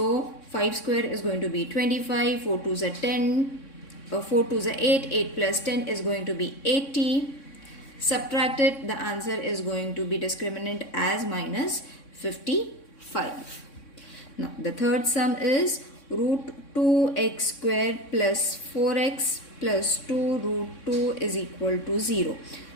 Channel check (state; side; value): late; right; 3.6 ms